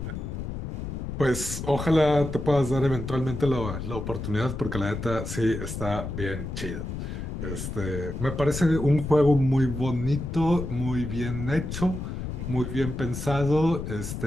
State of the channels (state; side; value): noise; left; rumble, 6 dB below the sound